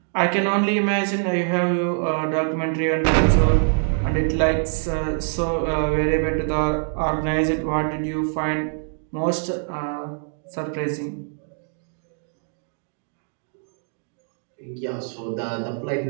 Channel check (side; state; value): left; silent; 63 dB below the other